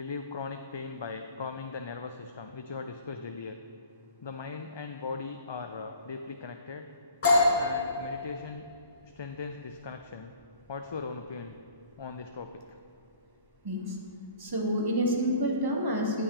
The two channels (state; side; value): inverted; both; correlation -0.49